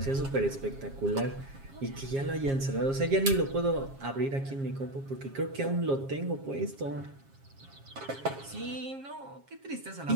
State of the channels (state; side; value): late; left; 7.4 ms